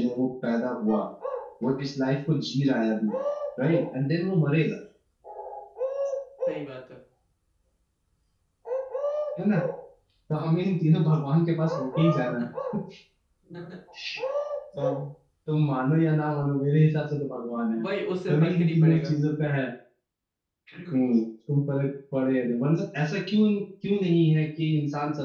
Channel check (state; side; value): identical; both; correlation 1.00